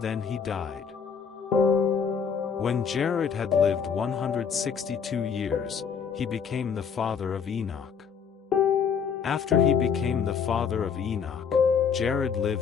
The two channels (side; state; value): right; quieter; 6.7 dB